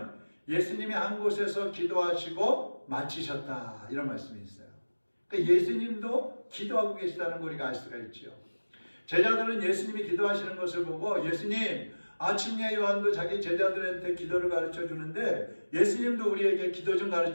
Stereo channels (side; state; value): both; inverted; correlation -1.00